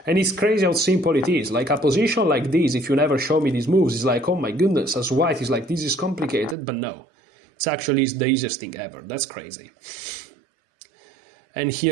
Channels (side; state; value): left; drops out; at 6.6 s